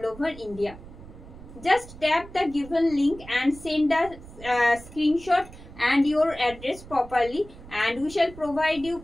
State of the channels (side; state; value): right; noise; rumble, 17 dB below the sound